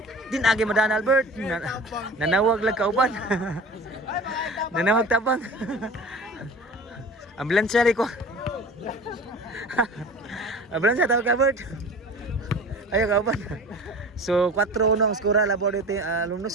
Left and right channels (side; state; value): both; normal; correlation 0.38